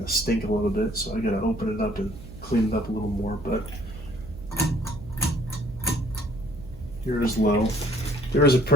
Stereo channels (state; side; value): noise; right; hum, 16 dB below the sound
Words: of stink a little bit, so I gotta open it up and clean it up a little more. But here is low. There is a